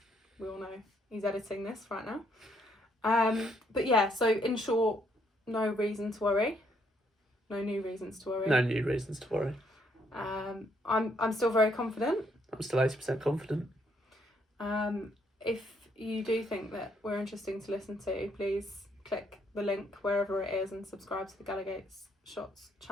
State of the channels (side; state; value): both; normal; correlation 0.71